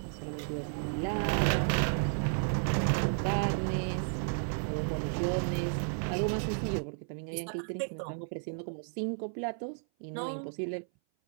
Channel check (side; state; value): left; silent; 56 dB below the other